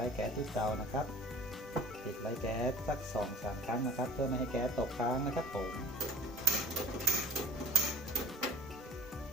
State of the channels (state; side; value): normal; both; correlation 0.46